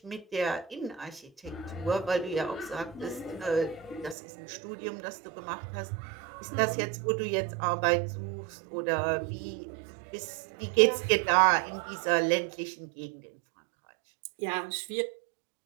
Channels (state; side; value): drops out; left; at 4.2 s